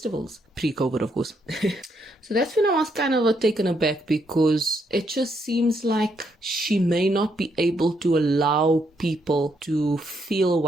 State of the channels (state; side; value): normal; both; correlation 0.76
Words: pre-COVID of course. So that's when I was kind of taken aback, because it just seems like she may not be able to allow people to feel